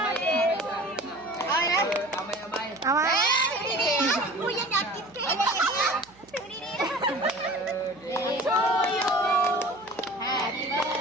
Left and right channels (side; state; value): right; noise; hum, 28 dB below the sound